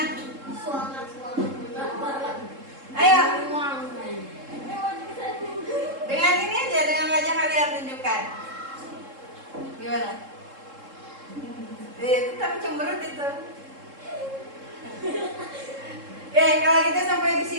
Ayo. Dengan ini aja, dengan wajah kalian tunjukkan. Gimana? Itu tapi cemberut itu. Oke, kalau gitu sampai di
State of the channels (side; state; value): left; late; 3.7 ms